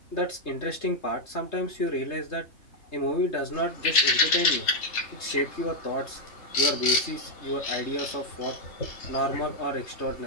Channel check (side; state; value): right; late; 3.3 ms